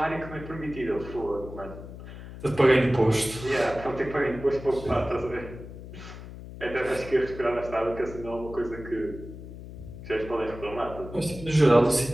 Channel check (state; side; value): noise; left; hum, 13 dB below the sound